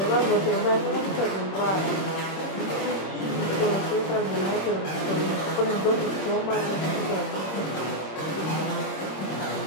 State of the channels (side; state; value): right; late; 26 ms